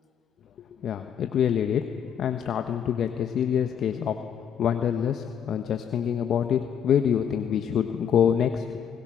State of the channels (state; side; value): quieter; right; 8.2 dB